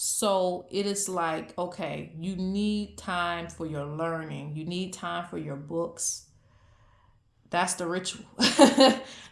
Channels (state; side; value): identical; both; correlation 1.00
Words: it is like, okay, you need time for your learning. You need time for your books. That's the ritual.